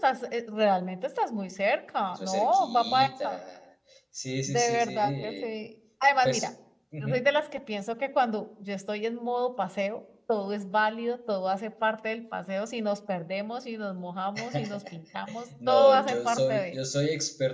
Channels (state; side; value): identical; both; correlation 1.00